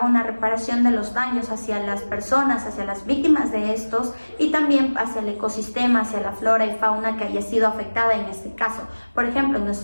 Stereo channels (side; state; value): both; inverted; correlation -1.00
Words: una reparación de los daños hacia las personas, hacia las víctimas de estos y también hacia el ecosistema, hacia la flora y fauna que haya sido afectada en este caso. Por ejemplo, en